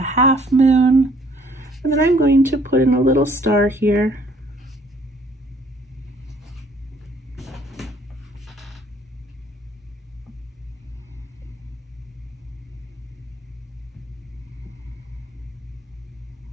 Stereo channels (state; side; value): normal; both; correlation 0.60